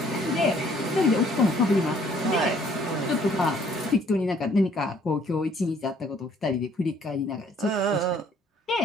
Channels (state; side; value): normal; both; correlation 0.61